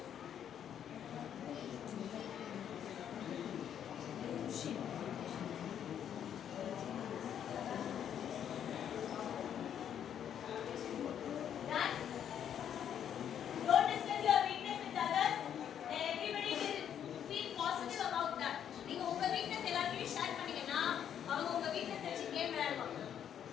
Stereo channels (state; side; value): quieter; right; 9.3 dB